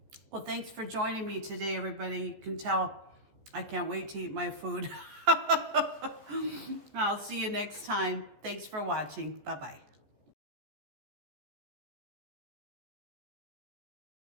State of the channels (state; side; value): late; left; 14 ms